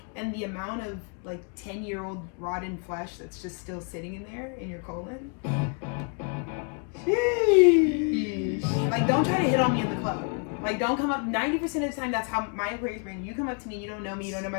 and the amount of, like, 10-year-old rotten flesh that's just still sitting in there in your colon. Sheesh. Like, don't try to hit on me in the club. Like, don't come up. 90% of the time, that's how my Aquarius brain. You come up to me, you don't know me, you don't know my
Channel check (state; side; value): quieter; right; 38.0 dB